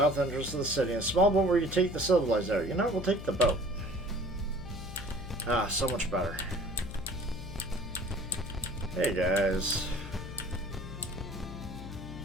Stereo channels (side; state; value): left; noise; hum, 11 dB below the sound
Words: entrances to the city. A small boat where you take the civilized out. You know, we'll take the boat. Ah, so much better. Hey guys.